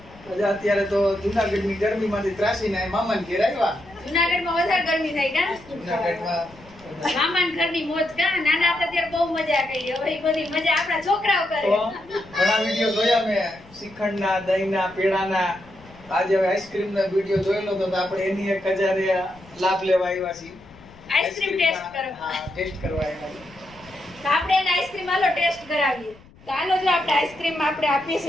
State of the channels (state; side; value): noise; left; rumble, 24 dB below the sound